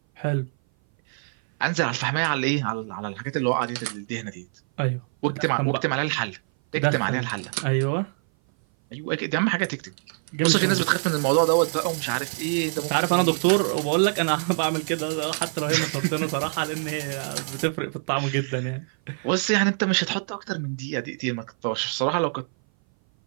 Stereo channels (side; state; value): left; silent; 58 dB below the other